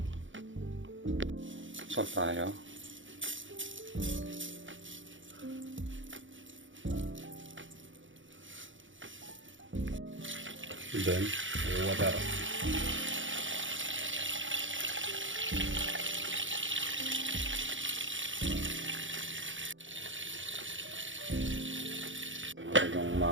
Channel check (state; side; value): late; left; 0.56 ms